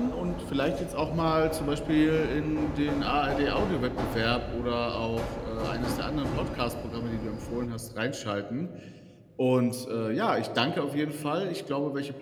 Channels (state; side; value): identical; both; correlation 1.00